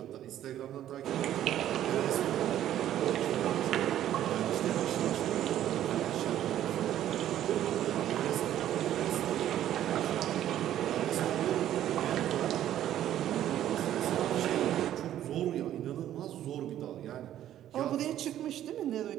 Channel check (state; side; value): quieter; left; 11.9 dB